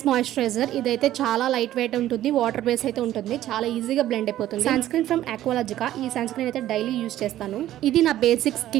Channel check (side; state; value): left; quieter; 13.3 dB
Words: మాయిశ్చరైజర్ ఇదైతే చాలా లైట్ వెయిట్ ఉంటుంది, వాటర్ బేస్ అయితే ఉంటుంది, చాలా ఈజీగా బ్లెండ్ అయిపోతుంది. సన్ స్క్రీన్ ఫ్రమ్ ఆక్వాలజికా, ఈ సన్ స్క్రీన్ అయితే డైలీ యూజ్ చేస్తాను. ఇది నా బేసిక్